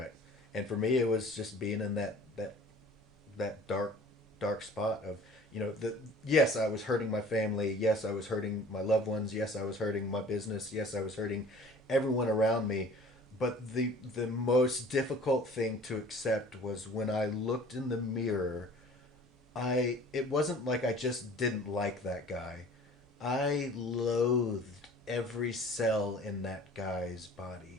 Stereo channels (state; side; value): normal; both; correlation 0.48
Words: And for me, it was just being in that dark spot of, yes, I was hurting my family. Yes, I was hurting my loved ones. Yes, I was hurting my business. Yes, I was hurting everyone around me. But the most difficult thing to accept was when I looked in the mirror, it wasn't like I just didn't like that guy. I loathed every cell in that guy's